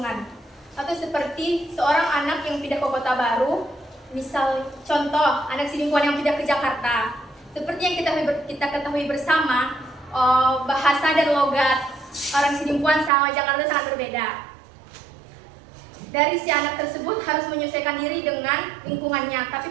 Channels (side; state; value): left; drops out; at 13.1 s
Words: Atau seperti seorang anak yang pindah ke kota baru, misal contoh anak Sidimpuan yang pindah ke Jakarta. Seperti yang kita ketahui bersama, bahasa dan logat orang Sidimpuan sama Jakarta sangat berbeda. Dari si anak tersebut harus menyesuaikan diri dengan lingkungannya, tapi